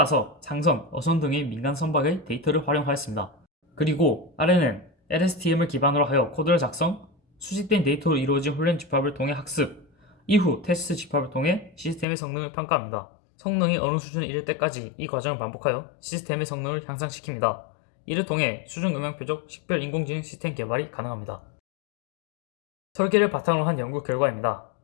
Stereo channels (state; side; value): drops out; right; at 12.1 s